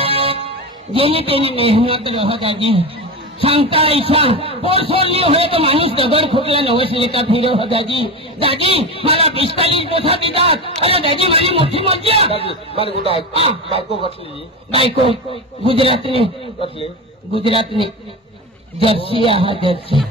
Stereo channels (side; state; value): both; normal; correlation 0.23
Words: જેની તેની મહેનત રહો દાદી सांगता ऐसा पोर सोडली होय तो माणूस दगड फुटला नवस लेका फिरो हो दाजी दाजी मला 45 पोसा देतात अरे दाजी माझी मोठी मज्जा मला कुठं आहे बायको कसली बायको गुजरातनी कसली गुजरातनी जर्सी आहा जर्सी